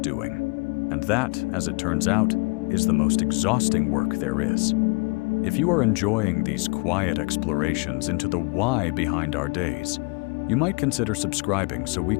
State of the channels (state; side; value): quieter; right; 31.3 dB